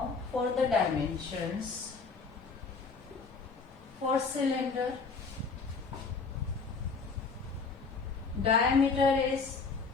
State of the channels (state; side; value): quieter; right; 4.7 dB